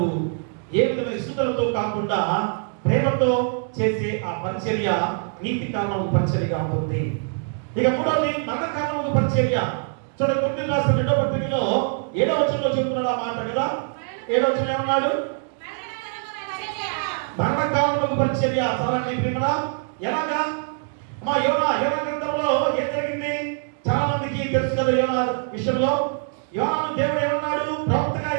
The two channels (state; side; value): silent; left; 55 dB below the other